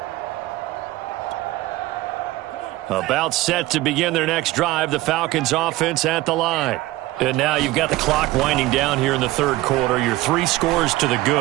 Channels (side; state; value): left; quieter; 17.9 dB